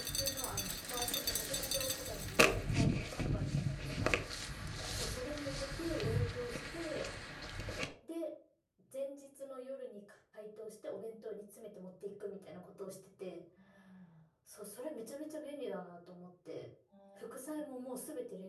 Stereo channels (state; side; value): identical; both; correlation 1.00